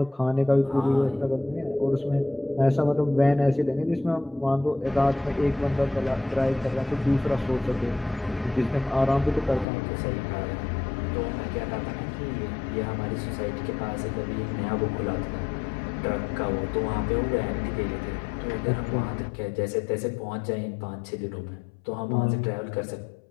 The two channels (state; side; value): drops out; right; at 9.7 s